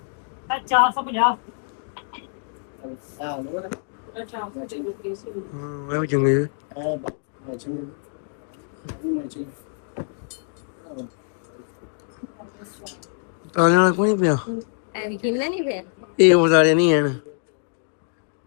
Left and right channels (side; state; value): right; silent; 62 dB below the other